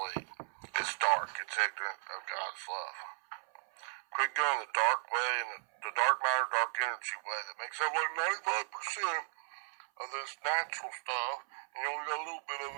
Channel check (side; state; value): left; silent; 54 dB below the other